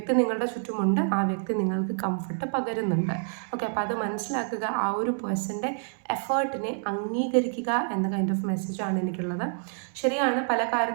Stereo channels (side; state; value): left; silent; 60 dB below the other